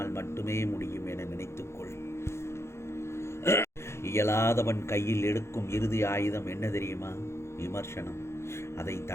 மட்டுமே முடியும் என நினைத்துக்கொள். இயலாதவன் கையில் எடுக்கும் இறுதி ஆயுதம் என்ன தெரியுமா? விமர்சனம். அதை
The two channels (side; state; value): right; late; 0.13 ms